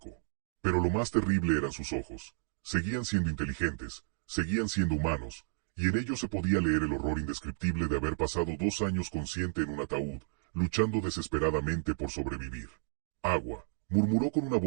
Pero lo más terrible eran sus ojos. Seguían siendo inteligentes, seguían siendo humanos, y en ellos se podía leer el horror indescriptible de haber pasado 2 años consciente en un ataúd, luchando desesperadamente por sobrevivir. «Agua», murmuró con una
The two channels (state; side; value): silent; left; digital silence